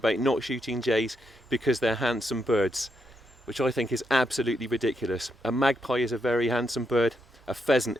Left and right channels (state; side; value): normal; both; correlation 0.81